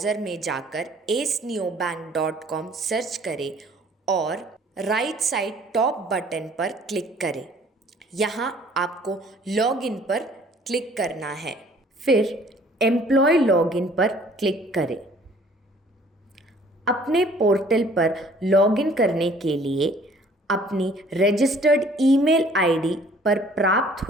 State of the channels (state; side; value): normal; both; correlation 0.56